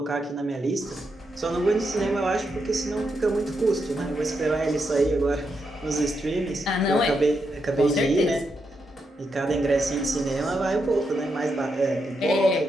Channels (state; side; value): normal; both; correlation 0.83